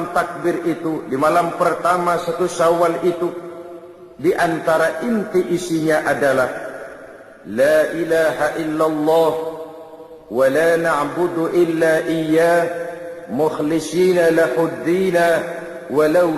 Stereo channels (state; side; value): identical; both; correlation 1.00